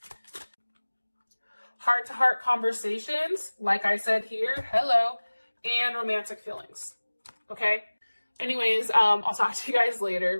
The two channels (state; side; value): inverted; both; correlation -1.00